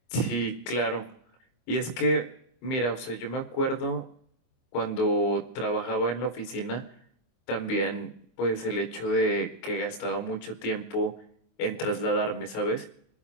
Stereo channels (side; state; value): right; late; 25 ms